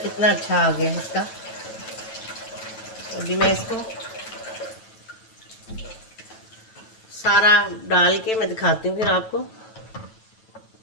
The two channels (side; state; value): right; late; 9.1 ms